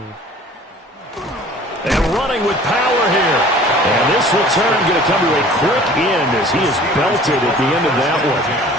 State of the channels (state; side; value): normal; both; correlation 0.48